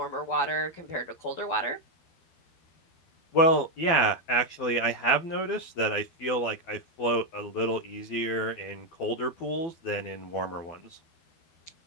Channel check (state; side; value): late; right; 12 ms